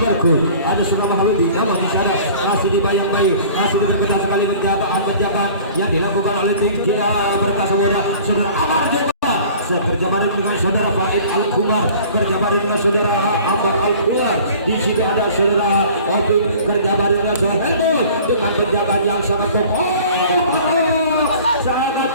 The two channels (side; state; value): both; inverted; correlation -0.47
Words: ada saudara Mahaludi. Namun di sana masih dibayang-bayang, masih diperketat sekali penjagaan yang dilakukan oleh tim kita Perkasa Muda. Saudara Amar juga kerja bareng dengan saudara Faid Al-Kumar, kerja bareng dengan saudara Amar Al-Kumar. Di situ ada saudara Opi, kerja bareng dengan saudara Hellboy dengan penjagaan yang sangat kokoh. Sangat